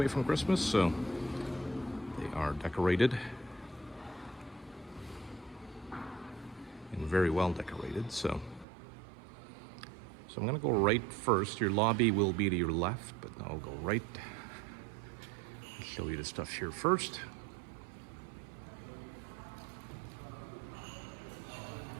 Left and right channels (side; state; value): left; drops out; at 8.7 s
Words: from Christmas, so they are decorated. And very well decorated, so I'm gonna go right first. Your lobby will be to your left, but I'll go right. I'll show you the stuff here first.